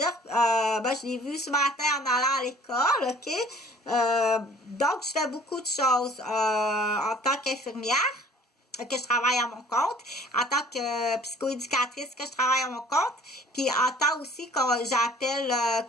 ben je l'ai vu ce matin en allant à l'école, ok? Donc je fais beaucoup de choses en tant qu'infirmière, que je travaille à mon compte, en tant que psychoéducatrice que je travaille à mon compte, puis en tant aussi que j'appelle,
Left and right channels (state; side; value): normal; both; correlation 0.52